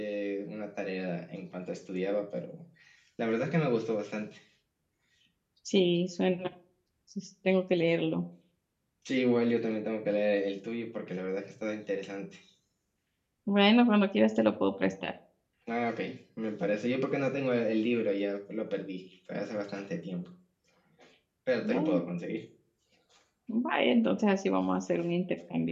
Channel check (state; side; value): identical; both; correlation 1.00